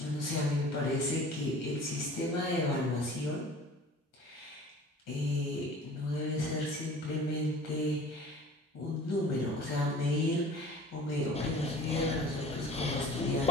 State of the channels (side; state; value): both; normal; correlation 0.44